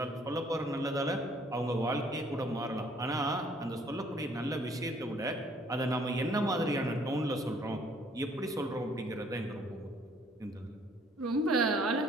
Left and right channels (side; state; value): both; normal; correlation 0.61